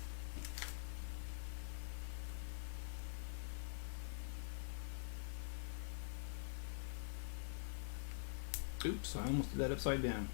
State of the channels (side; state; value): right; silent; digital silence